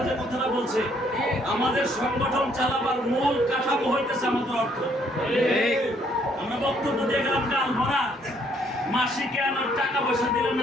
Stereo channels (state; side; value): normal; both; correlation 0.67